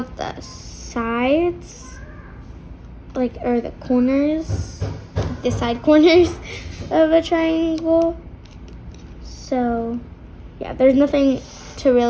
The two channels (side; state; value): both; identical; correlation 1.00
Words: the sides, like, or the corners, the side corners of a triangle. So yeah, there's nothing to